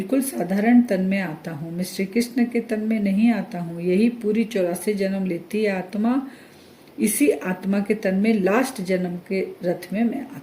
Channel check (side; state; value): both; identical; correlation 1.00